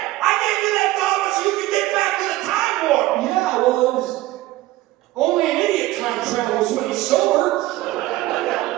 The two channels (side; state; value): left; quieter; 17.0 dB